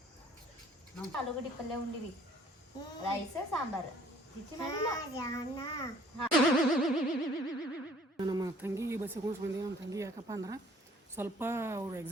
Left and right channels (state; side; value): normal; both; correlation 0.57